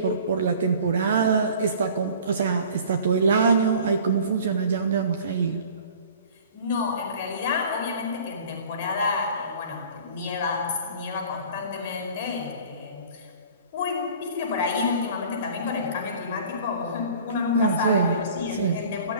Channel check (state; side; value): inverted; both; correlation -0.46